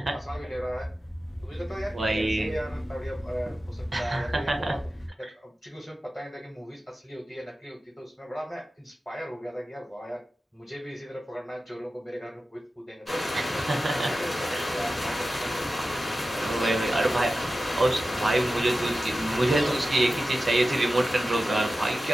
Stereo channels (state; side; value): normal; both; correlation 0.94